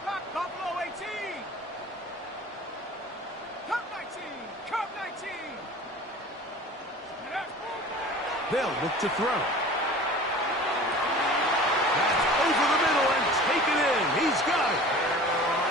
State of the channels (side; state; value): both; normal; correlation 0.41